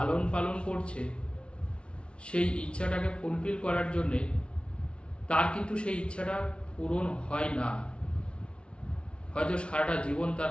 পালন করছে, সেই ইচ্ছাটাকে ফুলফিল করার জন্যে, তার কিন্তু সেই ইচ্ছাটা পূরণ হয় না। হয়তো সারাটা জীবন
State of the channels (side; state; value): right; late; 0.059 ms